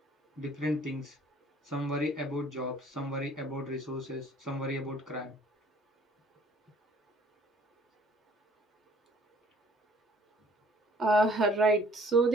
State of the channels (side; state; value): both; normal; correlation 0.57